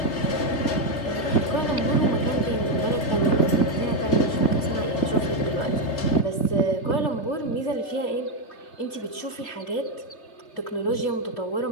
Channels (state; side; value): late; right; 3.3 ms